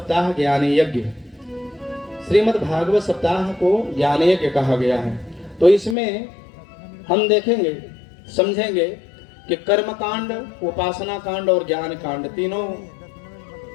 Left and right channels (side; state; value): right; drops out; at 6.0 s